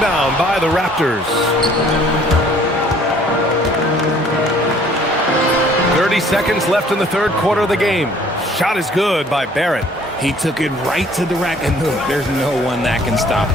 by the Raptors. 30 seconds left in the third quarter of the game. Shot is good by Barrett. He took it right to the rack, and look, there's no one that can stop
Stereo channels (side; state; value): both; normal; correlation 0.57